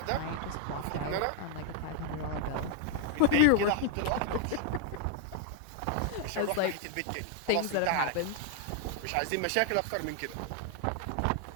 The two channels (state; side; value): different; both; correlation 0.00